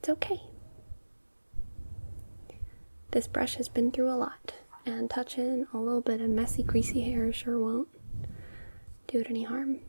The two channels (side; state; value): both; inverted; correlation -1.00